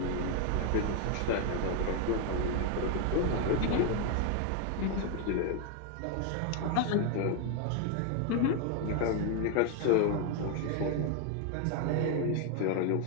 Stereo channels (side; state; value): both; different; correlation 0.01